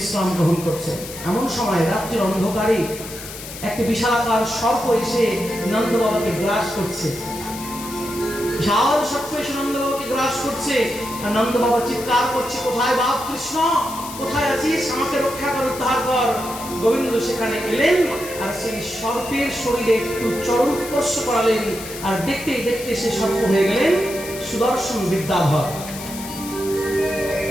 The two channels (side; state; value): left; noise; hiss, 12 dB below the sound